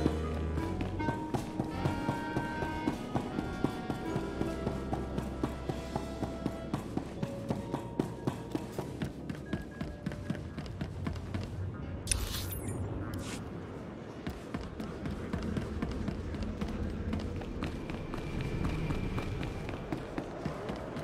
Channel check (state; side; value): identical; both; correlation 1.00